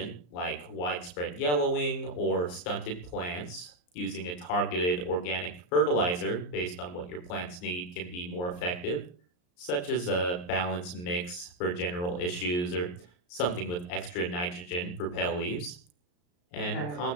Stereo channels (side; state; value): right; late; 34 ms